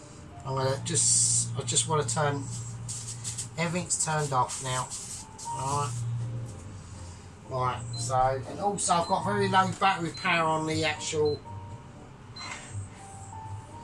I just want to turn, everything's turned off now. Alright. Right, so, and also I've got very low battery power on the actual,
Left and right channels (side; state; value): both; identical; correlation 1.00